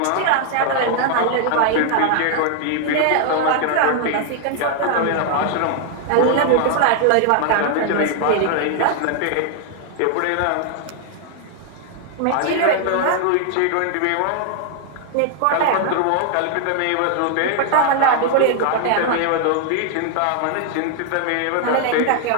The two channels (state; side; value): different; both; correlation 0.00